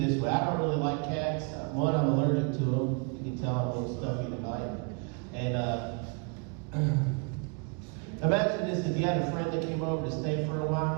this way. I don't really like cats. One, I'm allergic to them. You can tell I'm a little stuffy tonight. And imagine this, if you had a friend that came over to stay for a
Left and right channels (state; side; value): quieter; left; 35.0 dB